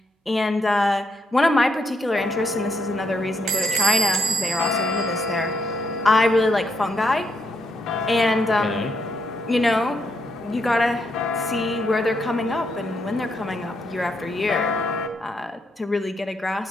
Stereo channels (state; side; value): normal; both; correlation 0.77